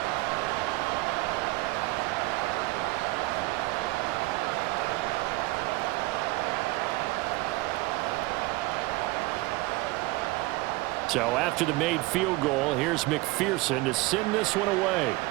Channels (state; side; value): quieter; left; 21.1 dB